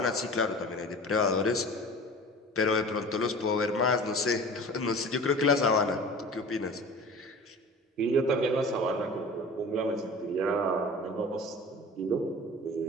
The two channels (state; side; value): normal; both; correlation 0.39